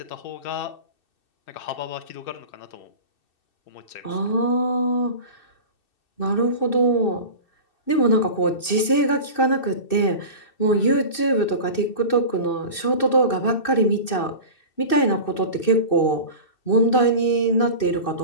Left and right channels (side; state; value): right; late; 2.6 ms